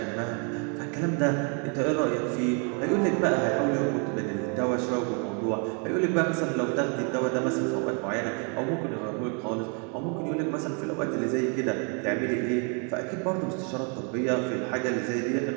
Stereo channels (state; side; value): quieter; left; 37.6 dB